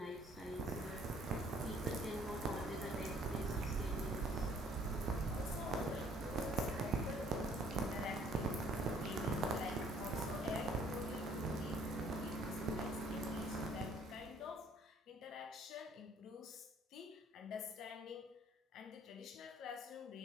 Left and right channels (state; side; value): normal; both; correlation 0.60